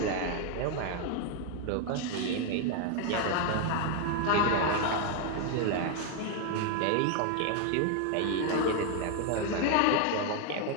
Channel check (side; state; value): both; different; correlation 0.01